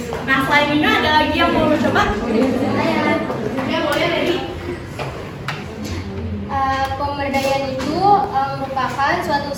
Nah, selain ini ada lagi yang mau coba? Ya, boleh dari. Pemberdayaan itu merupakan suatu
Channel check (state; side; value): identical; both; correlation 1.00